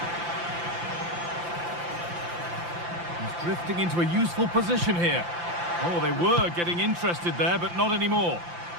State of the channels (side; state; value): left; late; 5.8 ms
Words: Drifting into a useful position here. Oh, they were getting interested there, but not anymore.